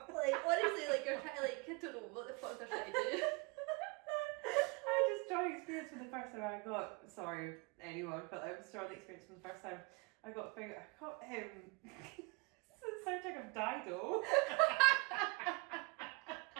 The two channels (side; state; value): left; quieter; 29.4 dB